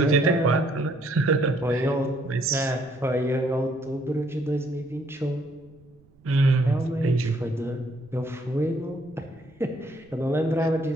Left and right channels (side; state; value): right; noise; rumble, 29 dB below the sound